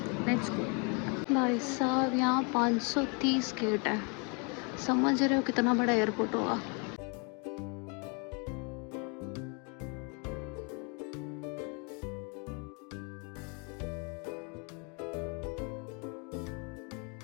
Let's go. भाई साहब, यहाँ 530 गेट है, समझ रहे हो कितना बड़ा एयरपोर्ट होगा।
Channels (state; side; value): quieter; right; 34.7 dB